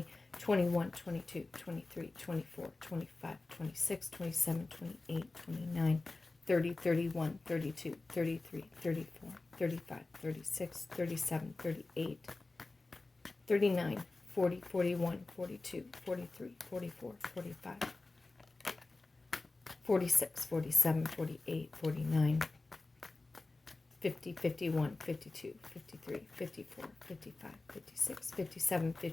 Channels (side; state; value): right; quieter; 3.3 dB